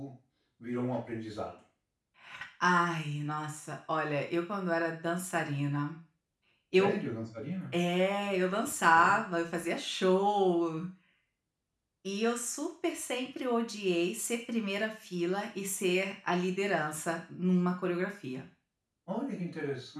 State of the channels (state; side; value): identical; both; correlation 1.00